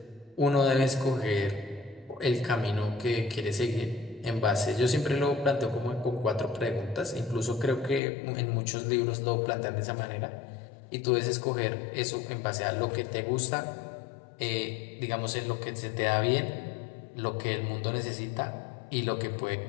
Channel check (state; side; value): drops out; right; at 8.0 s